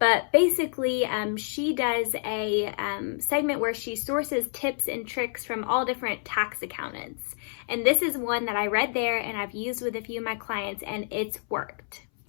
basically, she does a segment where she sources tips and tricks from all different tax accountants. And this is one that I read there and I've used with a few of my clients, and it's worked.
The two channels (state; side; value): silent; right; 59 dB below the other